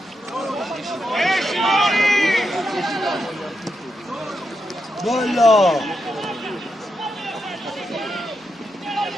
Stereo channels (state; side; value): normal; both; correlation 0.85